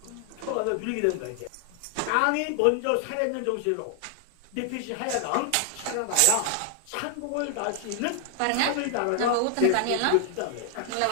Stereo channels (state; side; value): different; both; correlation 0.00